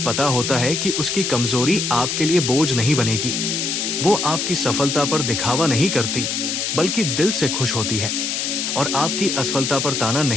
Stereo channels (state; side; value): noise; left; hiss, 1 dB below the sound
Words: होता है कि उसकी कमजोरी आपके लिए बोझ नहीं बनेगी। वो आपकी सफलता पर दिखावा नहीं करती बल्कि दिल से खुश होती है, और आपकी असफलता पर ताना